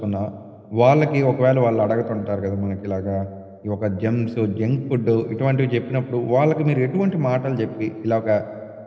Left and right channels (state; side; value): identical; both; correlation 1.00